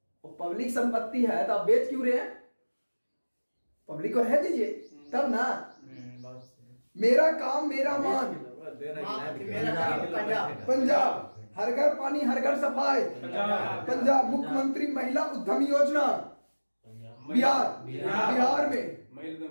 और पब्लिक संपत्ति है तो आप बेच क्यों रहे हैं? पब्लिक को रह दीजिए तब ना। मेरा काम मेरा मान। पंजाब हर घर पानी हर घर सफाई। पंजाब मुख्यमंत्री महिला उद्यम योजना बिहार में।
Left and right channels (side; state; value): both; inverted; correlation -1.00